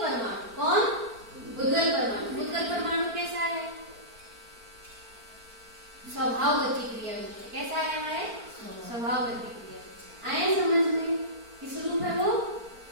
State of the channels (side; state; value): left; late; 4.4 ms